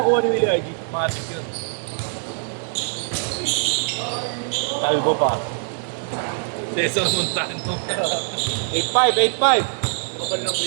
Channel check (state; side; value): silent; left; digital silence